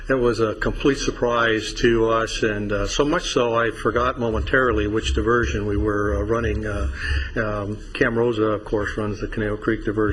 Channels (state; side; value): identical; both; correlation 1.00